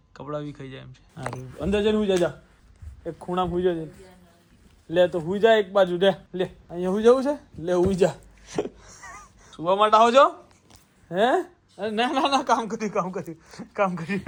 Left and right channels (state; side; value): identical; both; correlation 1.00